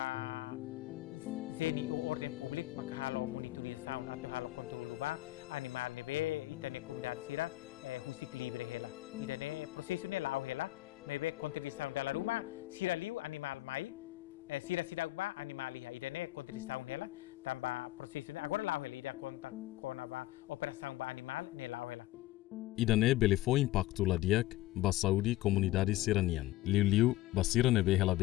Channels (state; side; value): quieter; right; 16.7 dB